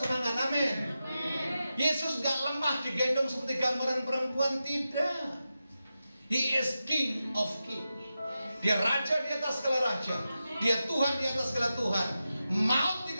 amin. Yesus gak lemah digendong seperti gambaran perempuan, tidak. He is King of King. Dia raja di atas segala raja. Dia Tuhan di atas segala Tuhan. Maut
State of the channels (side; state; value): both; inverted; correlation -0.91